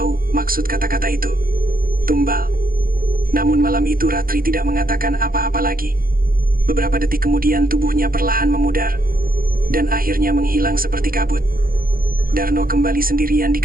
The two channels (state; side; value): late; left; 0.42 ms